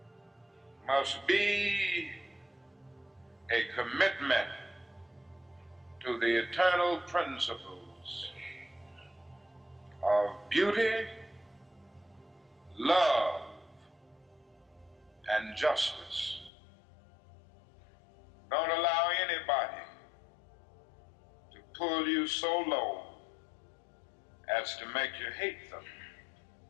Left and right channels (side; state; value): right; drops out; at 16.5 s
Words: must be a commitment to the eternal principles of beauty, love, and justice. Don't allow anybody to pull you so low as to make you hate them.